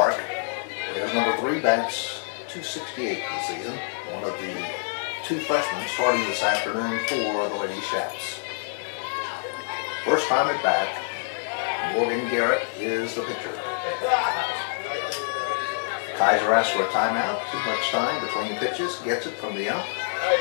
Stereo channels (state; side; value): silent; right; digital silence